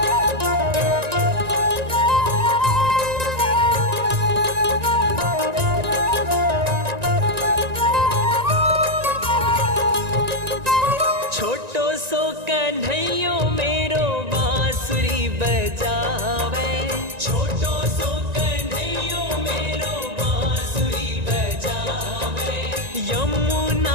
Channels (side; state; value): left; late; 1.9 ms